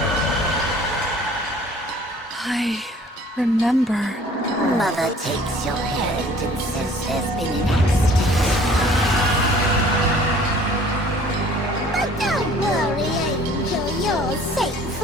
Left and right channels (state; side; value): normal; both; correlation 0.52